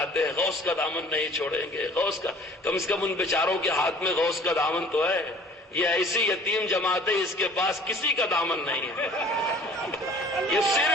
ہیں غوث کا دامن نہیں چھوڑیں گے, غوث کا, کم سے کم ان بیچاروں کے ہاتھ میں غوث کا دامن تو ہے. یہ ایسی یتیم جماعت ہے, اس کے پاس کسی کا دامن نہیں ہے. یہ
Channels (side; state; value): both; normal; correlation 0.50